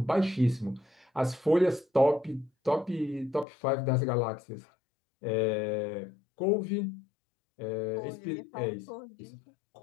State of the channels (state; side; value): drops out; right; at 3.5 s